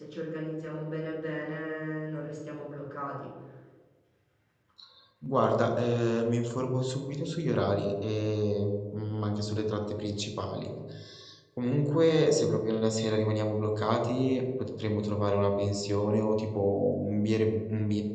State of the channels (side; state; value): both; identical; correlation 1.00